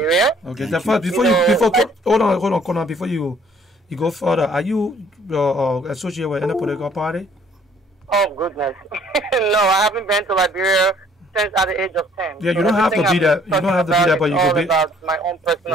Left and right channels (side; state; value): both; normal; correlation 0.59